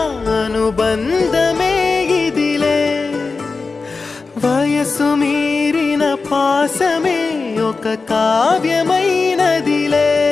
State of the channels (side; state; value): right; quieter; 4.2 dB